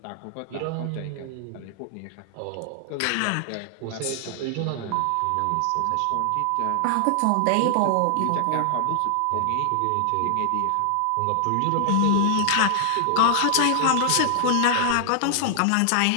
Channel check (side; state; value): both; different; correlation 0.00